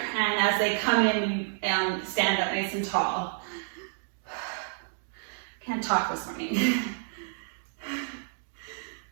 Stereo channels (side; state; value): left; silent; digital silence